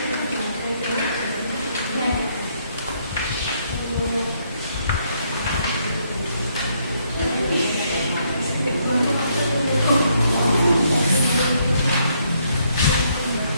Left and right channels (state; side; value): inverted; both; correlation -0.72